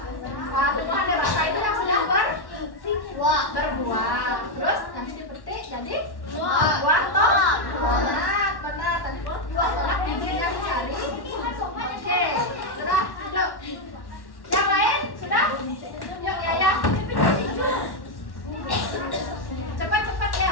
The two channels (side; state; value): right; late; 1.1 ms